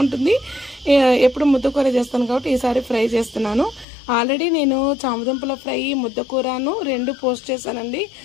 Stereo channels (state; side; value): drops out; right; at 3.9 s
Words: ఎప్పుడు ముద్దకూర చేస్తాను కాబట్టి ఈసారి ఫ్రై చేస్తున్నాను. ఆల్రెడీ నేను చామదుంపల ఫ్రై ముద్దకూరను 2 పోస్ట్ చేశానండి.